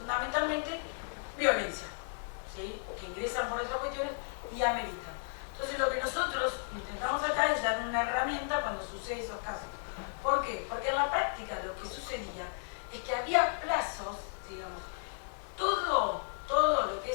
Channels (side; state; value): right; silent; digital silence